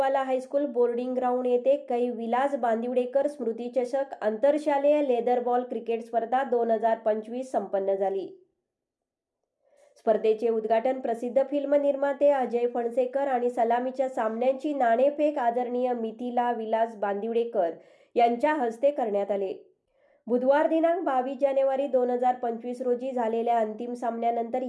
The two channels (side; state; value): both; identical; correlation 1.00